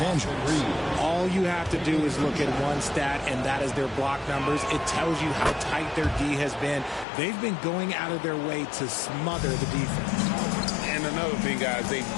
Angeles. All you have to do is look at one stat, and that is their block numbers. It tells you how tight their D has been. They've been going out of their way to smother the defense. And another thing, guys, they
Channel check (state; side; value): drops out; right; at 7.1 s